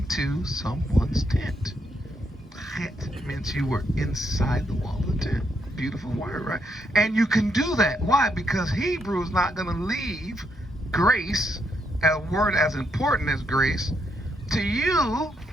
someone's tent. That meant you were inside the wall of the tent. Beautiful word, right? And you can do that. Why? Because Hebrew is not going to leave grace, a word as important as grace, to you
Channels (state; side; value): normal; both; correlation 0.77